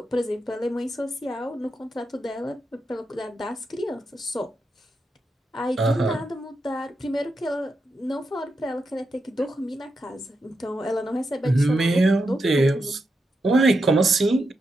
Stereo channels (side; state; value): both; normal; correlation 0.85